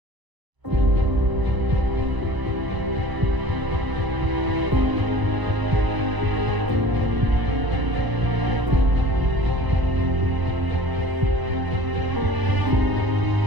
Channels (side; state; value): left; late; 1.0 ms